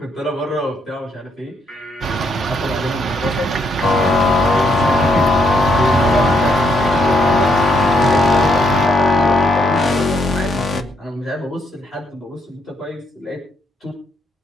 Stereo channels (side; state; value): both; normal; correlation 0.75